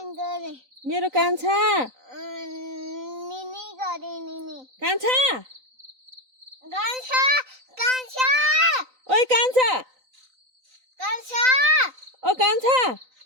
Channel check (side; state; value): left; late; 3.9 ms